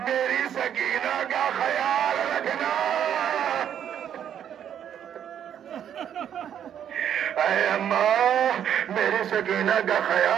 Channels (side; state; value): left; quieter; 9.4 dB